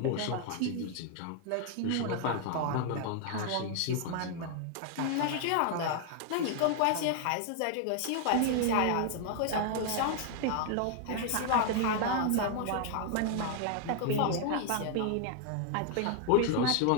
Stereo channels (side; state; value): both; different; correlation 0.00